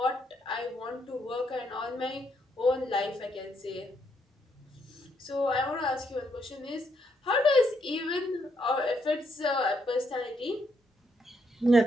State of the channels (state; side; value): normal; both; correlation 0.75